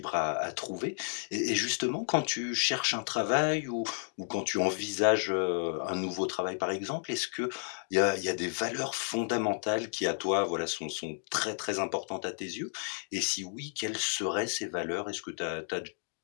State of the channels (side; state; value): right; silent; 56 dB below the other